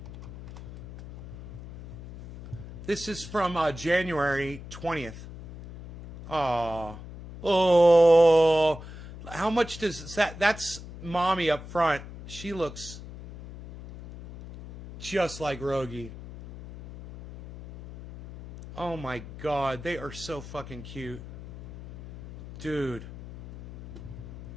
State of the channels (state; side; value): noise; left; hum, 13 dB below the sound